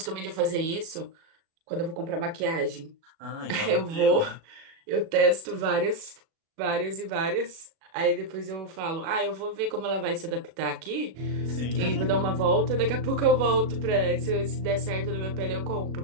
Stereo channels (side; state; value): left; late; 37 ms